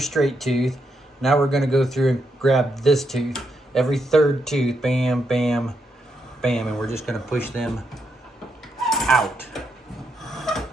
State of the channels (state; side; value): normal; both; correlation 0.81